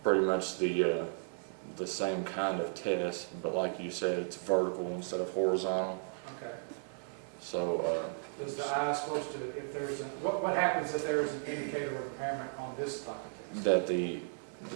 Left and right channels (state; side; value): silent; left; digital silence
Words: pretty much the same kind of test, but like you said, it's vertical instead of horizontal. Okay. So Does the eye supposed to, if there's a, what happens if there is an indicator of impairment on this type of test? that the